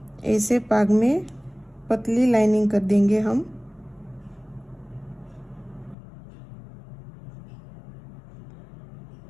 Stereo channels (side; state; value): right; drops out; at 6.0 s